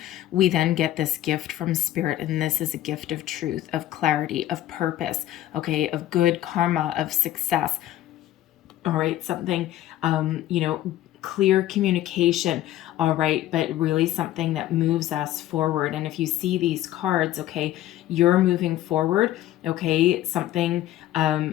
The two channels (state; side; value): quieter; right; 13.7 dB